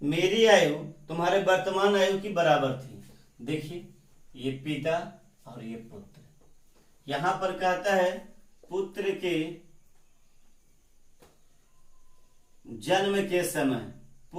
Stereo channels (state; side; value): identical; both; correlation 1.00